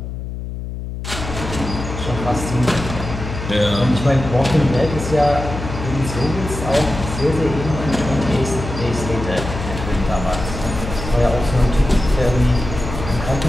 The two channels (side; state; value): left; noise; hum, 7 dB below the sound